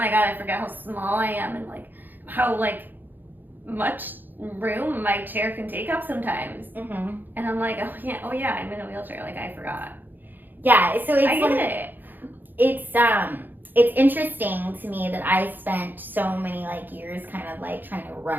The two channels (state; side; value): late; left; 0.089 ms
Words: god, I forget how small I am, and like how like much room my chair can take up sometimes. Mm-hmm. And I'm like, oh yeah, I'm in a wheelchair. Like I forgot. Yeah, so it's I get it. It's interesting to me that I spent so many like years kind of like trying to